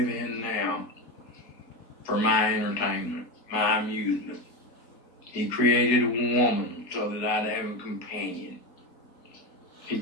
in now for my entertainment, my amusement. He created a woman so that I'd have a companion. He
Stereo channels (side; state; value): right; late; 4.6 ms